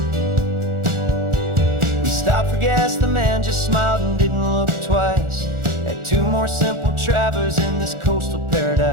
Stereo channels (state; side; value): late; left; 1.4 ms